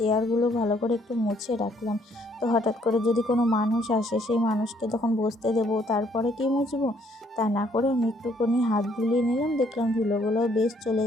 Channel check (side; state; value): both; normal; correlation 0.66